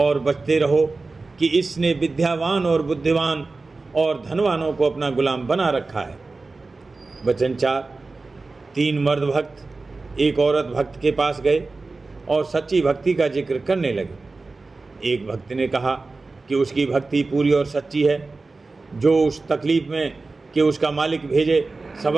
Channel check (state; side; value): quieter; left; 3.7 dB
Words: बचते रहो कि इसने विद्यावान और बुद्धिमान और धनवानों को अपना गुलाम बना रखा है। वचन 4। 3 मर्द भक्त एक औरत भक्त के पास गए और सच्ची भक्ति का जिक्र करने लगे। एक भक्त ने कहा कि उसकी भक्ति पूरी और सच्ची है, जो उस तकलीफ में कि उसका मालिक भेजे